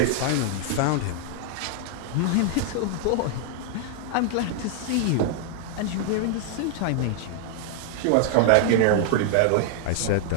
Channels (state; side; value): different; both; correlation 0.00